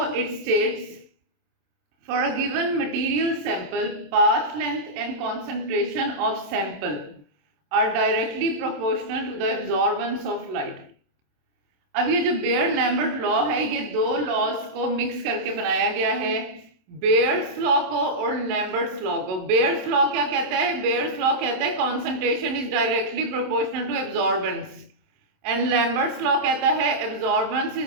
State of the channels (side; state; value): left; late; 27 ms